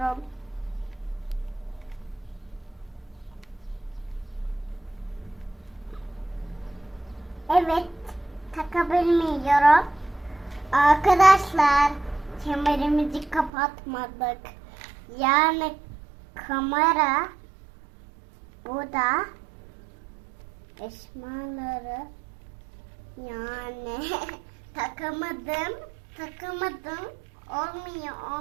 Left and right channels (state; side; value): drops out; left; at 13.5 s